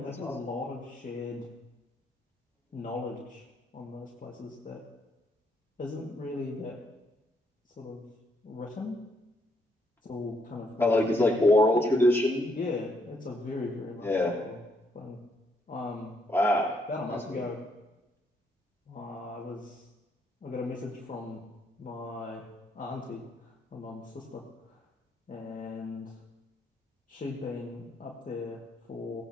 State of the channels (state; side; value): normal; both; correlation 0.73